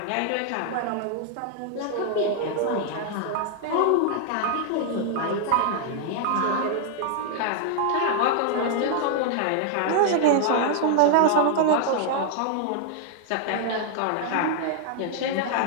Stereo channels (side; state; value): both; different; correlation 0.00